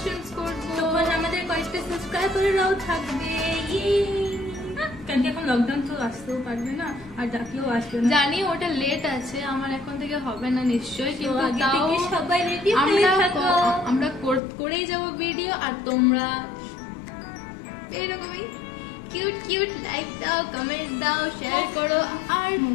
করবো, তখন আমাদের কয়েকটা সাবস্ক্রাইবাররাও থাকবে। কারণ এখন লকডাউন তো আসতেও পারবে না, আর ডাকলেও আসবে না। জানি ওটা লেট আছে, আমার এখন থেকে হবে না নিশ্চয়ই, কিন্তু আগে তাও থেকে সবাই রেডি হয়ে থাকো, আমরা করেই যাব ভিডিও। আর তোমরা এইরকমই কিউট কিউট, লাইক দাও, কমেন্ট দাও, শেয়ার করো। আর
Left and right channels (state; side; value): drops out; right; at 14.4 s